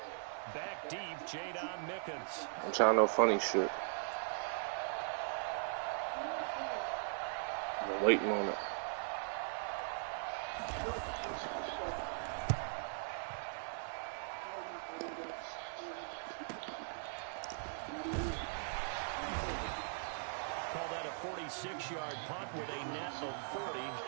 Back deep, Jadon Mickens. I'm trying no funny shit. I'm waiting on it. Call that a 46-yard punt with a net of 40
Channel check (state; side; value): silent; left; digital silence